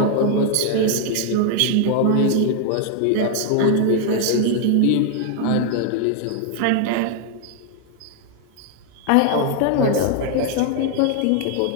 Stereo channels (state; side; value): different; both; correlation 0.00